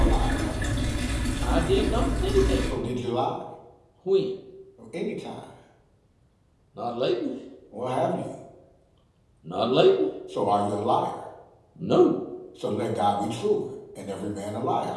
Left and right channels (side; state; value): both; identical; correlation 1.00